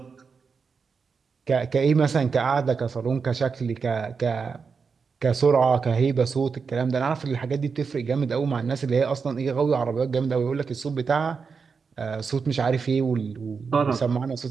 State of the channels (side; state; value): left; quieter; 5.4 dB